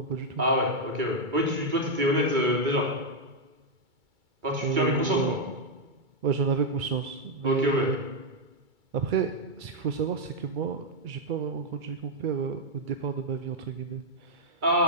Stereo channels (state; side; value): late; left; 2.3 ms